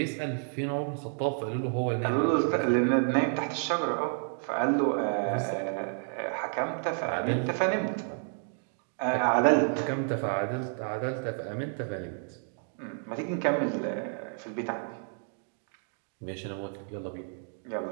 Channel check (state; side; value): silent; left; 55 dB below the other